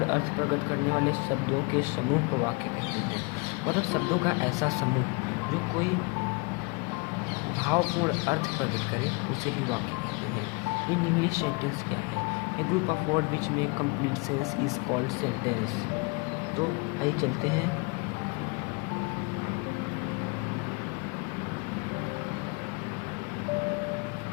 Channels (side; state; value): right; quieter; 30.2 dB